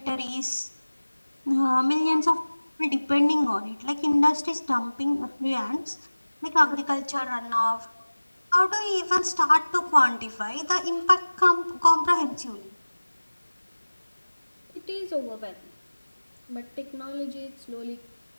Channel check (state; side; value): inverted; both; correlation -1.00